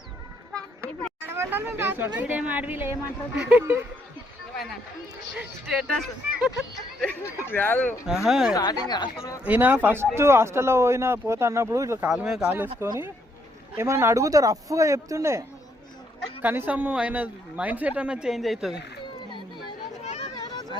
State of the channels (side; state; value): both; normal; correlation 0.72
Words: ఇప్పుడేం అడవిలో ఏమంటారు ఈయన ఫస్ట్ హాస్టల్లో పోతా అన్నప్పుడు ఇట్లా కాలు మీద కాలు వేసుకొని ఏమన్నా అడుగుతా రఫ్గా చెప్తుండే. కనీసం ఆయన మైండ్ సెట్ అన్న చేంజ్ అవుతుంది.